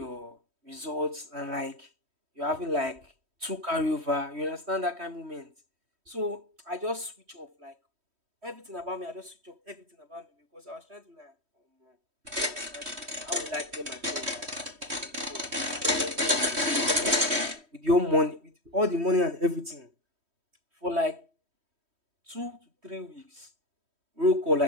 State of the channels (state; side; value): late; left; 3.1 ms